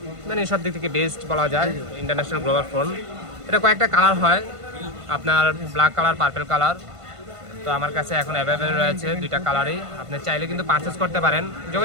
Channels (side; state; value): left; late; 1.5 ms